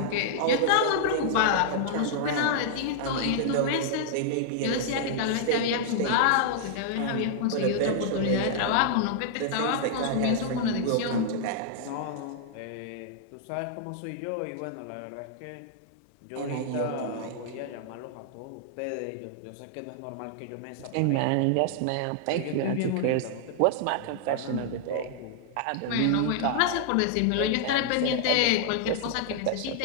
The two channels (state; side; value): different; both; correlation -0.01